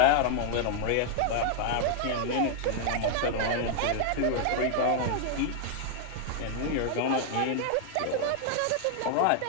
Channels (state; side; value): different; both; correlation 0.00